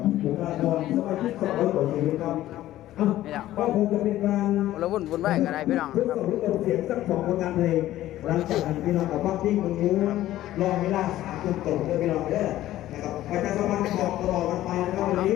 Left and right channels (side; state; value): right; quieter; 14.3 dB